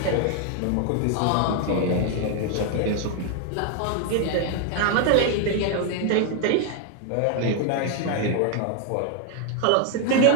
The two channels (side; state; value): both; different; correlation 0.00